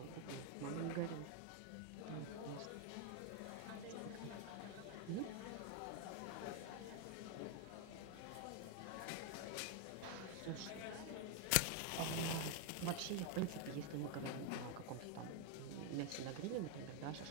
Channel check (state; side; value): different; both; correlation 0.01